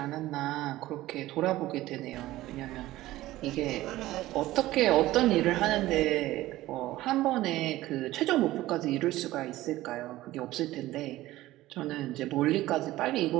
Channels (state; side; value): quieter; left; 16.4 dB